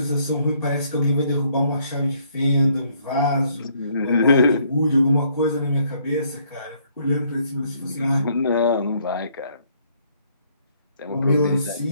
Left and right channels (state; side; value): inverted; both; correlation -0.67